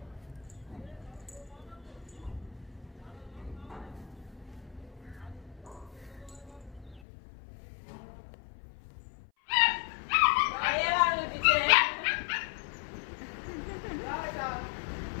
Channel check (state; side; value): drops out; right; at 7.0 s